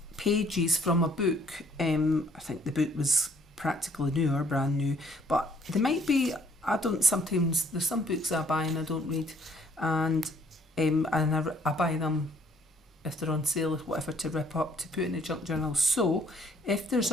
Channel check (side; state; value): both; normal; correlation 0.62